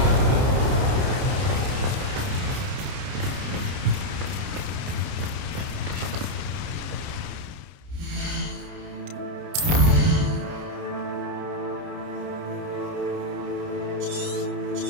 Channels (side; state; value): left; late; 30 ms